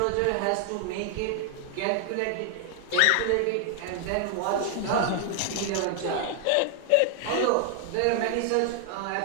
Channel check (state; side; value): different; both; correlation 0.00